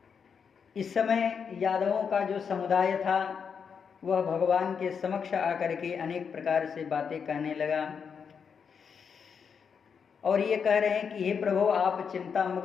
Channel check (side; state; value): right; quieter; 6.5 dB